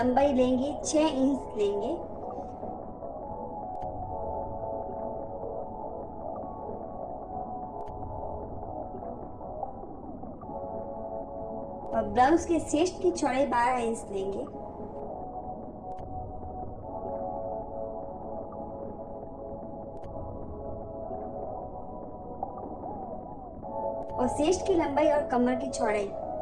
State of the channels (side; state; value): both; identical; correlation 1.00